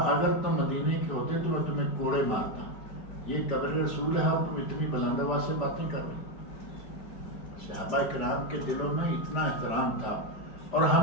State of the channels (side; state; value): right; late; 4.9 ms